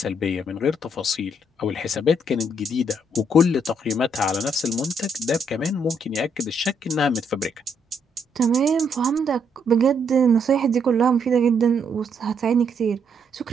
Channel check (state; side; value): normal; both; correlation 0.73